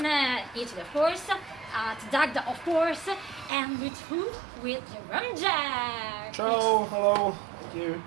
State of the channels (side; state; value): left; drops out; at 3.5 s